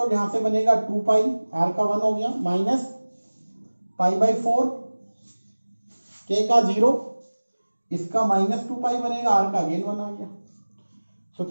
यहां से बनेगा 2 पाई, आर का 1 हो गया, माइनस पाई बाई 4, के का 0, इसका माइनस 2 पाई बनेगा, आर का अगेन 1 आ गया। तो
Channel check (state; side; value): inverted; both; correlation -1.00